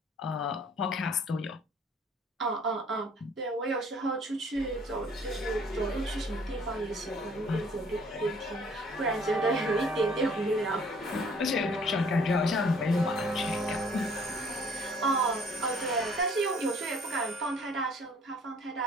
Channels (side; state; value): both; normal; correlation 0.57